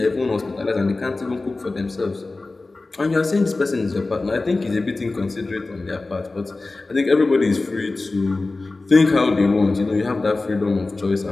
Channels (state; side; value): quieter; right; 3.3 dB